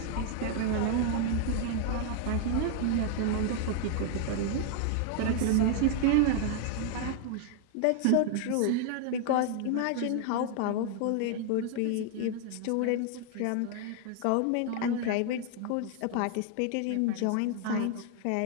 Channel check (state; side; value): different; both; correlation 0.00